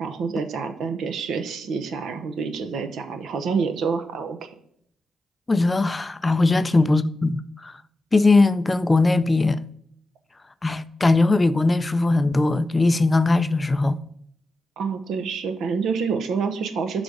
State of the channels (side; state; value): both; normal; correlation 0.90